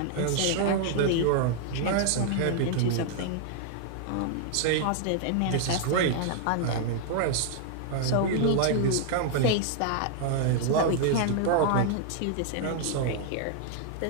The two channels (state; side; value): different; both; correlation 0.00